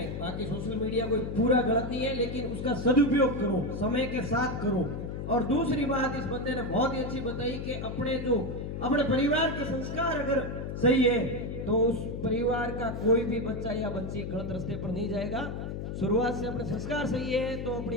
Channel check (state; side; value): noise; left; hum, 5 dB below the sound